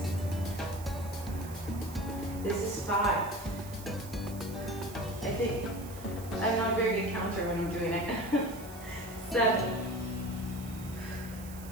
this is 5. I think I'm not a very good counter when I'm doing it. 7,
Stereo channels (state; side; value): noise; right; hiss, 16 dB below the sound